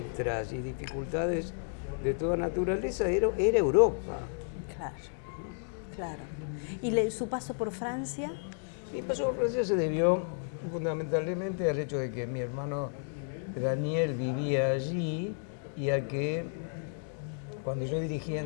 y dificultades de toda naturaleza, era Europa. Claro, claro. ¿Y su paso por Francia? Mi paso por Francia se debió fundamentalmente al hecho de que mi hermano Daniel vivía allí y a que cuando yo dirigía en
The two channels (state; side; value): silent; right; digital silence